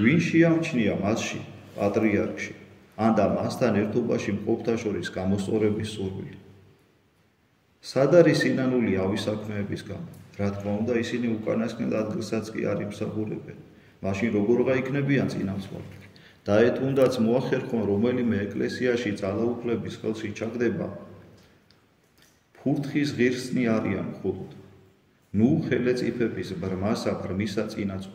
ვინ შეამჩნია მასში, პატრიარქში, ან და მასთან ერთობაში მყოფთა შორის გამოსწორების სურვილი. სად არის სინანული ავი საქმეების გამო? რა თქმა უნდა, ისინი უკანასკნელ ადგილსაც კი არ იმსახურებენ. მაშინ როგორღა იქნებიან წინამძღოლები? და თუნდაც მოახერხონ რომელიმე ეკლესიაში ძალაუფლების ხელში ჩაგდება, ფურთხის ღირსნი არიან მხოლოდ. ნუ ხელეწიფების ბრმასა ბრმისა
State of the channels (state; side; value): identical; both; correlation 1.00